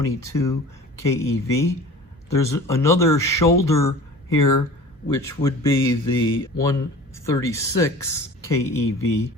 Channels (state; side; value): normal; both; correlation 0.41